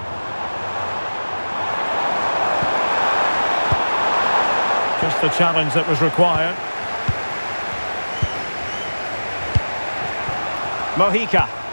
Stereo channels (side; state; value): both; inverted; correlation -1.00